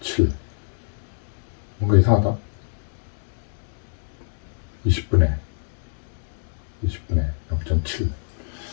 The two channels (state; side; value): silent; right; digital silence